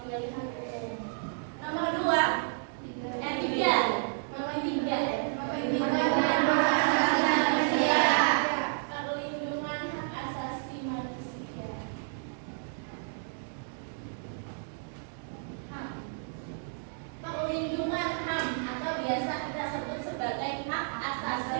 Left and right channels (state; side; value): silent; left; digital silence